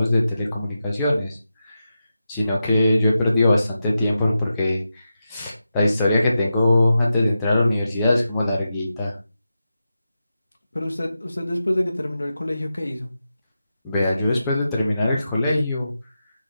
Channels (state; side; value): inverted; both; correlation -0.89